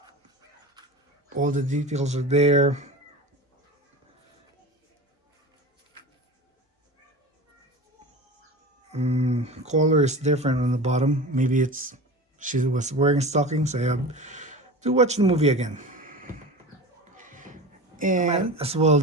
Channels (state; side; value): normal; both; correlation 0.32